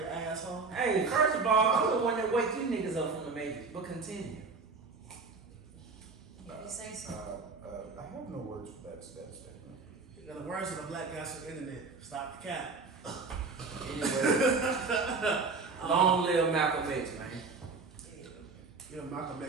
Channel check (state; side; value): quieter; left; 4.4 dB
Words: asshole. Hey, first of all, I'm the one that wake you niggas up from the Matrix, but continue. If you say so. I have no words for that statement. You know, the words of the black guys on the internet. Stop the cap. Anyway, long live Malcolm X, man. Yeah, Malcolm